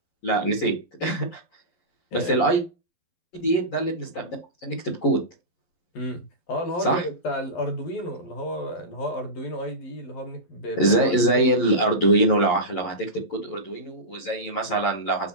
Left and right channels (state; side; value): late; right; 11 ms